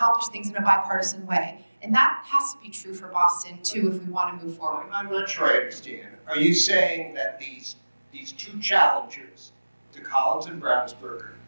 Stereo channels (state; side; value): inverted; both; correlation -1.00